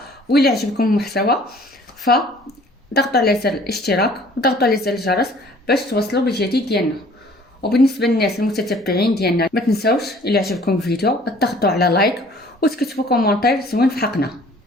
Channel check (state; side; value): normal; both; correlation 0.53